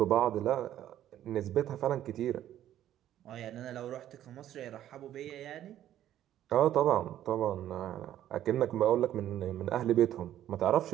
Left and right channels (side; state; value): left; quieter; 12.0 dB